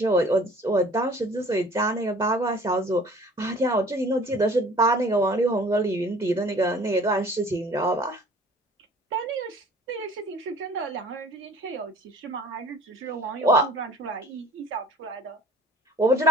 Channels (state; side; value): normal; both; correlation 0.50